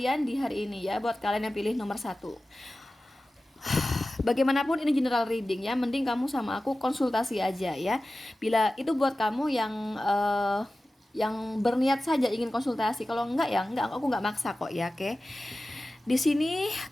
di hari ini ya, buat kalian yang pilih nomor satu. Bagaimanapun ini general reading ya, mending kamu sama aku konsultasi aja ya. Bila itu buat kamu yang berniat saja ingin konsultasi, kalau enggak ya enggak, aku nggak maksa kok ya, oke? Di sini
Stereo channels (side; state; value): both; normal; correlation 0.96